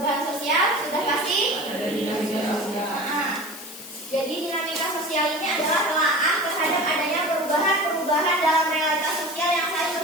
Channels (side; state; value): left; noise; hiss, 14 dB below the sound